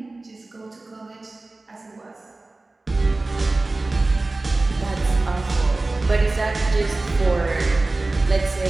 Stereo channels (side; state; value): left; quieter; 3.1 dB